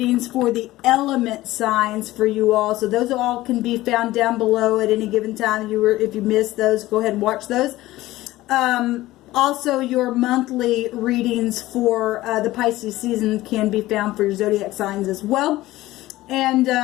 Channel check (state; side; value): quieter; right; 17.0 dB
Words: for the element signs for you all. So those all can be found down below at any given time. If you missed those, go ahead and watch those. Also, your monthly readings for the Pisces season can be found for your zodiac signs as well. And